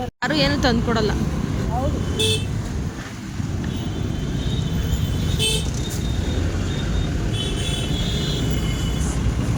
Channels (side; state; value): both; identical; correlation 1.00